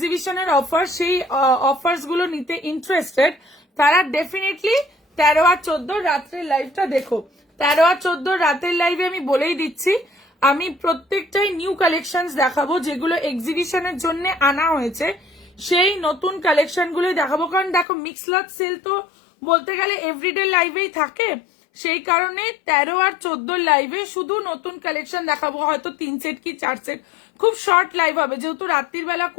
অফার, সেই অফার্স গুলো নিতে ইন্টারেস্টেড, তারা ডেফিনেটলি 13 আর 14 রাত্রের লাইভটা দেখো। 13 আর 14 রাতের লাইভে আমি বলেই দিচ্ছি, আমি প্রত্যেকটাই নিউ কালেকশনস দেখাবো, যেগুলো এক্সিবিশনের জন্য আনা হয়েছে সেই নতুন কালেকশন গুলোই দেখাবো। কারণ দেখো মিক্স লট সেল তো বলতে গেলে এভরিডে লাইভেই থাকে, সেই কারণে 13 আর 14 লাইভে শুধু নতুন কালেকশন দেখাবো, হয়তো 3 সেট কি 4 সেট, খুব শর্ট লাইভ হবে। যেহেতু রাত্রির বেলা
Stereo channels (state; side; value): drops out; right; at 17.9 s